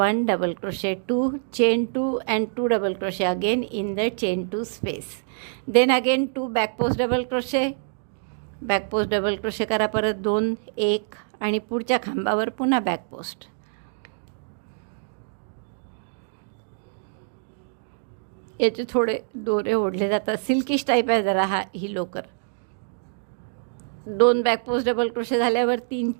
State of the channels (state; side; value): silent; left; digital silence